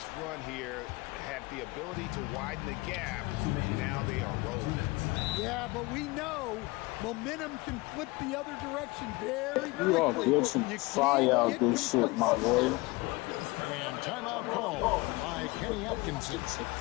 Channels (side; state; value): right; quieter; 23.3 dB